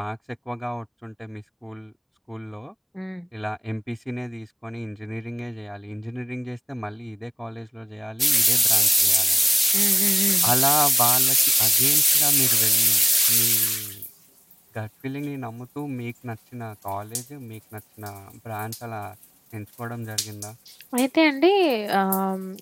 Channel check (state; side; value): identical; both; correlation 1.00